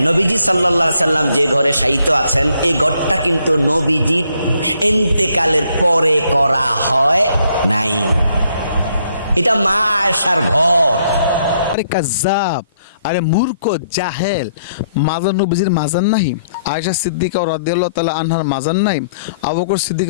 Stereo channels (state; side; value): inverted; both; correlation -0.70